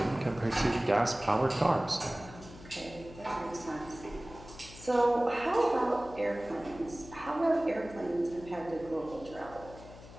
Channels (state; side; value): noise; left; hum, 17 dB below the sound